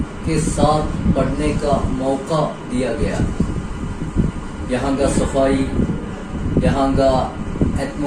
کے ساتھ پڑھنے کا موقع دیا گیا. یہاں کا صفائی، یہاں کا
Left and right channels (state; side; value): identical; both; correlation 1.00